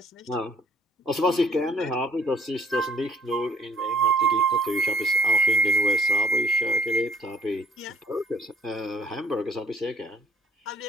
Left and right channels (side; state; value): both; normal; correlation 0.59